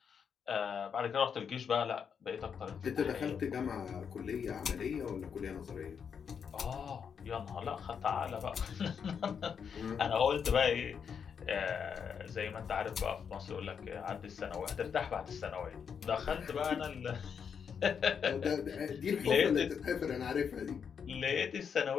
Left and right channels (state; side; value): quieter; right; 6.9 dB